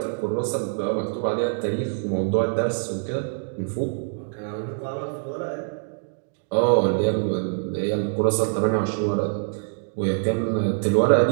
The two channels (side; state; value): left; silent; digital silence